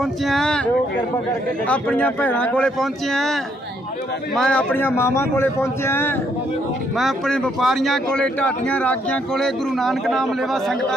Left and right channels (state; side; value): normal; both; correlation 0.71